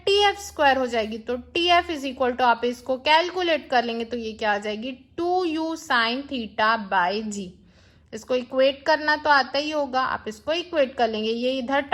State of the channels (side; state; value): both; identical; correlation 1.00